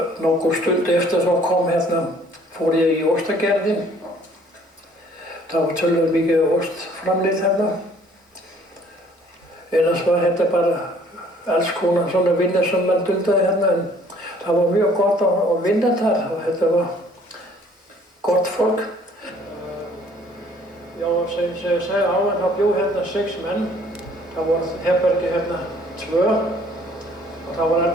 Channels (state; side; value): normal; both; correlation 0.57